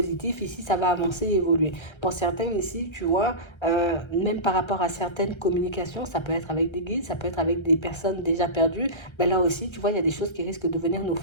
ici, ça va avancer et évoluer. Pour certains, ici, tu vois, même par rapport à certaines communications, ça peut être avec des guides, ça peut être avec des personnes déjà perdues, ben là aussi, tu vois, il y a des choses qui risquent de venir nous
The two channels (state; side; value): late; right; 1.3 ms